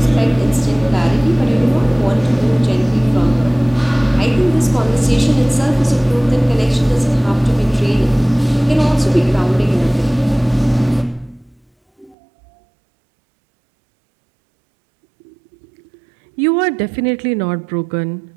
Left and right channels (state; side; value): drops out; left; at 12.2 s